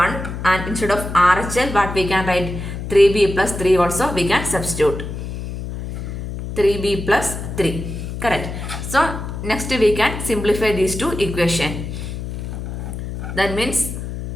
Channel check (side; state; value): left; noise; hum, 7 dB below the sound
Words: and instead of RHL, what we can write? 3b plus 3 also we can substitute. 3b plus 3. Correct. So next we can simplify these two equations. That means